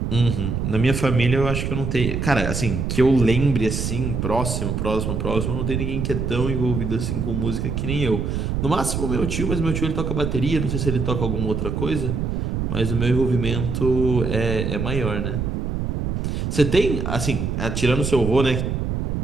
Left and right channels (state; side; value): noise; right; rumble, 2 dB below the sound